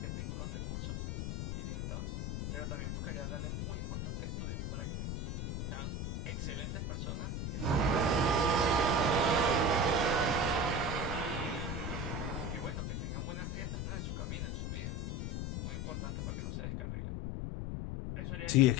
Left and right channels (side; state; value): left; noise; rumble, 2 dB below the sound